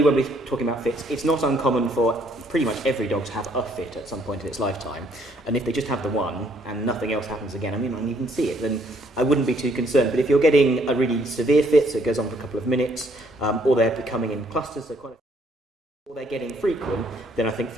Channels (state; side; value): normal; both; correlation 0.66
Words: when we're talking about fits, it's not uncommon for pretty much every dog to have a fit at some point in its lifetime. And if they just have the one and nothing else happens again, I mean, I don't even see it, then I wouldn't be too concerned. But if you're getting a really severe fit, so it goes on for a couple of minutes, or they're becoming in clusters, or they're getting frequent, then I think